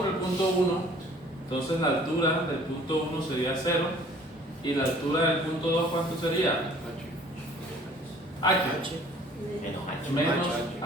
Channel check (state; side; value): normal; both; correlation 0.53